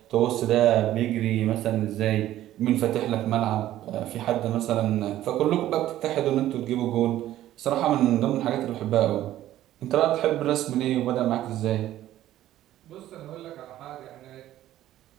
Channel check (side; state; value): left; quieter; 13.5 dB